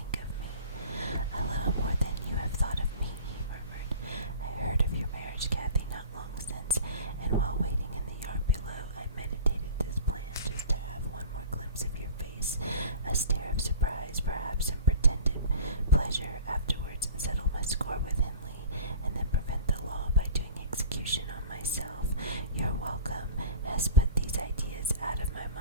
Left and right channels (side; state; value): both; inverted; correlation -0.40